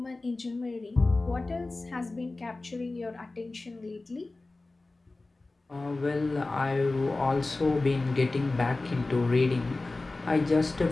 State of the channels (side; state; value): right; quieter; 3.2 dB